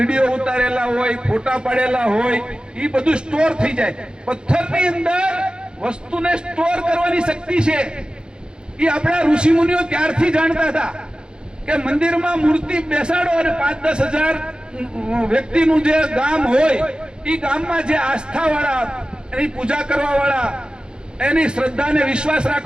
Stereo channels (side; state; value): left; late; 0.050 ms